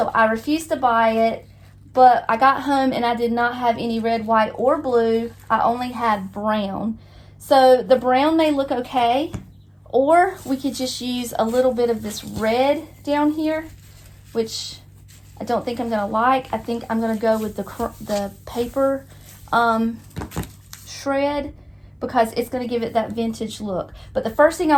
I refused to buy it. But I got home and I did not have any red, white, or blue. I only had brown. So the brown may look okay, or we could just use a little bit of this red down here, which I don't think I'm going to like. I think I'm going to go with the paper shred because it's going to give it that vintage look. But the first thing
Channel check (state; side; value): identical; both; correlation 1.00